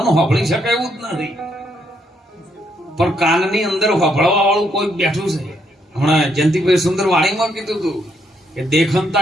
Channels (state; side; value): normal; both; correlation 0.74